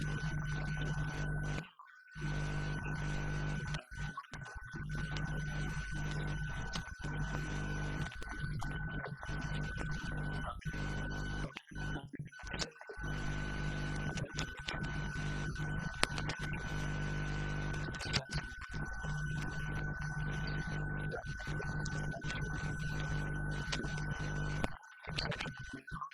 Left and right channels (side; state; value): both; identical; correlation 1.00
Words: and that are translated. These are all, I should point out, multi-linear, multi-vocal works. There's no single linear narrative in any of these writings. And I would say, I'd like to mention that perhaps the only exception to this sense of multilinearity, multifariousness, sort of fragmentation, fracturing of narrative integrity, the only exception one might